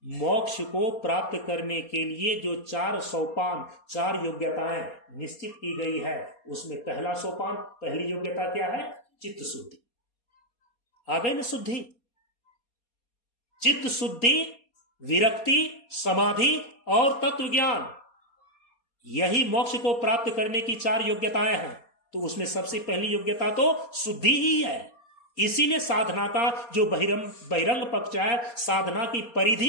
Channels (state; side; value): late; right; 4.2 ms